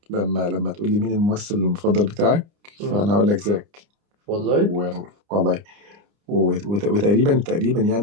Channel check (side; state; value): left; late; 30 ms